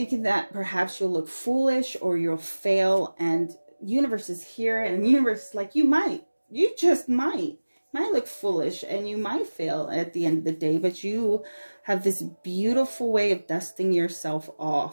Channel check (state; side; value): inverted; both; correlation -1.00